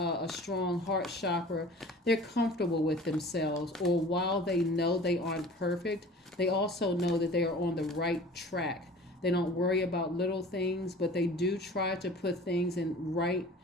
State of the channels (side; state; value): both; normal; correlation 0.43